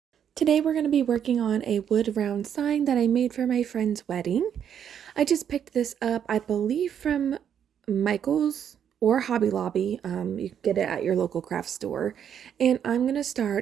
Today we're going to be working on a wood round sign that I made for my friend's wedding. I just picked this up, I believe, from Michael's or Hobby Lobby. You can get it at your local craft store. And I'm going to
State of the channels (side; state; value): left; quieter; 8.7 dB